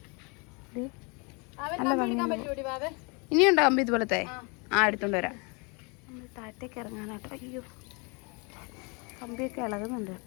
നല്ല ഭംഗി. ഇനിയുണ്ടോ കമ്പി ഇതുപോലത്തെ? എടുത്തോണ്ട് വരാം. നമ്മൾ താഴത്തേക്ക് ഇറങ്ങാനാട്ടോ. അയ്യോ, കമ്പിയൊക്കെ ഇളകുന്നുണ്ട്.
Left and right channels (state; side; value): quieter; right; 31.5 dB